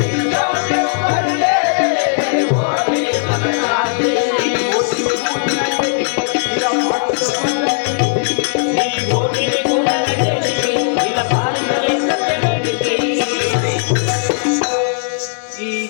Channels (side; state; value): right; silent; digital silence